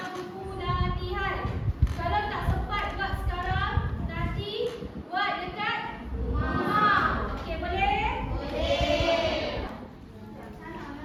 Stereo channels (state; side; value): identical; both; correlation 1.00